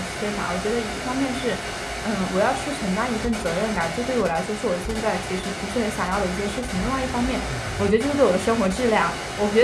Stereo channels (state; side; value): identical; both; correlation 1.00